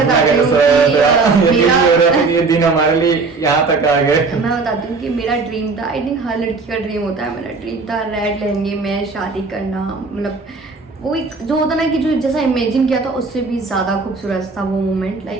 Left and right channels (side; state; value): left; quieter; 4.2 dB